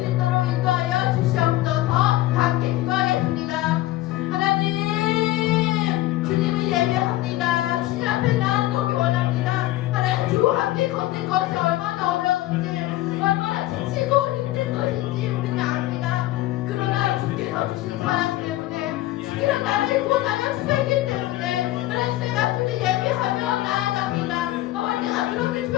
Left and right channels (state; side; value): quieter; right; 16.2 dB